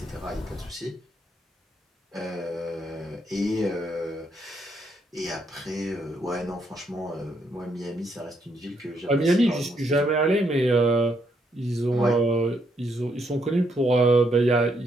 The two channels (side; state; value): both; normal; correlation 0.74